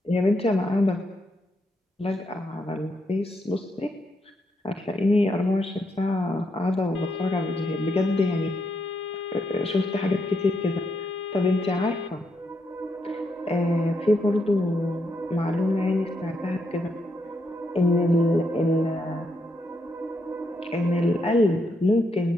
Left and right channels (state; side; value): normal; both; correlation 0.79